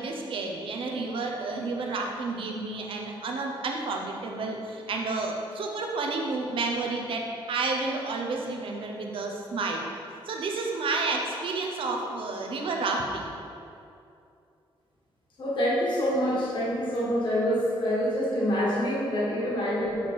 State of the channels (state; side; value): normal; both; correlation 0.53